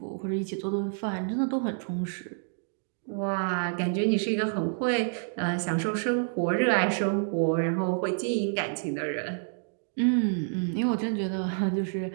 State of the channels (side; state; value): left; silent; digital silence